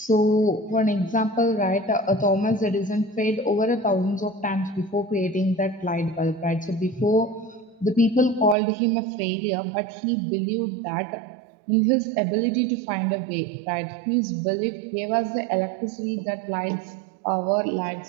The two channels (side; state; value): left; drops out; at 8.6 s